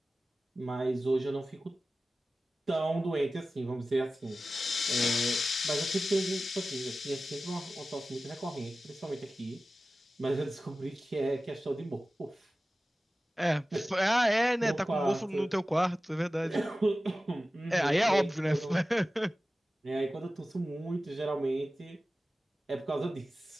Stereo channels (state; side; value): normal; both; correlation 0.95